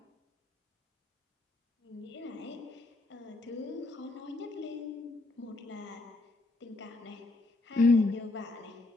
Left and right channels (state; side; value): quieter; right; 3.1 dB